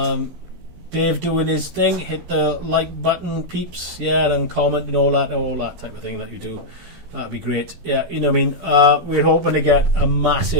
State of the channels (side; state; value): left; late; 15 ms